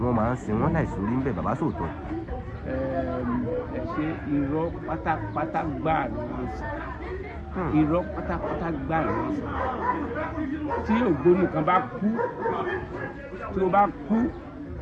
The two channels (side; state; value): both; identical; correlation 1.00